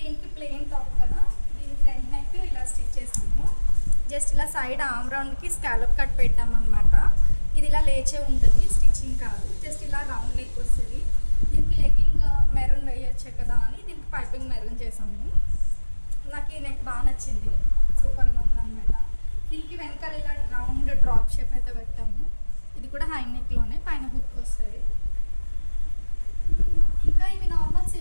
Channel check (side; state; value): both; inverted; correlation -1.00